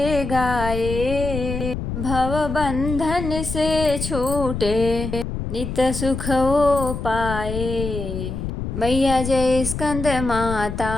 गाए, भव बंधन से छूटे, नित सुख वो पाए। मैया जय स्कंद माता,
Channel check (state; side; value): noise; left; rumble, 5 dB below the sound